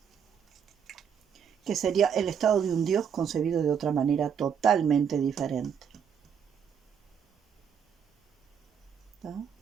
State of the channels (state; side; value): quieter; left; 7.6 dB